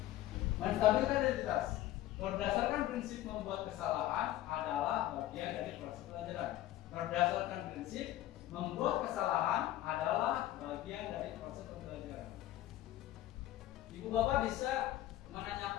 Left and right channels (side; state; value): right; quieter; 14.3 dB